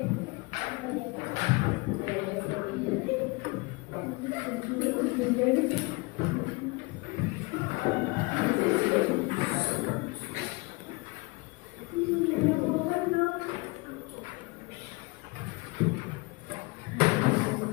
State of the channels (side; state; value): right; quieter; 26.3 dB